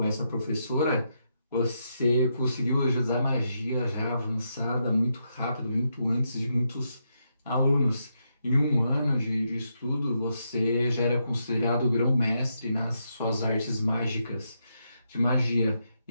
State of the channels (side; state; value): both; inverted; correlation -0.81